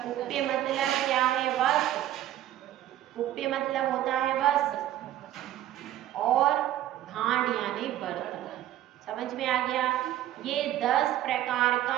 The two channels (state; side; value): quieter; left; 12.9 dB